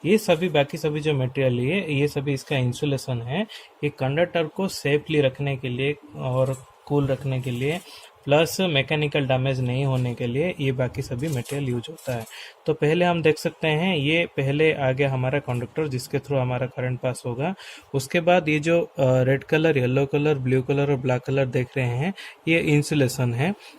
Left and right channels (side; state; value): both; identical; correlation 1.00